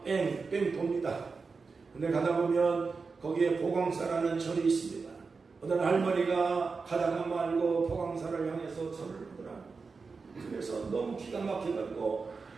뺑뺑 돕니다. 근데 가다 보면 거기에 보광사라는 절이 있습니다. 어떤 할머니가 가다가 말고 보광사를 향해서 절을 하더라. 그래서 너무 기가 막혀가지고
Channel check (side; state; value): left; quieter; 4.6 dB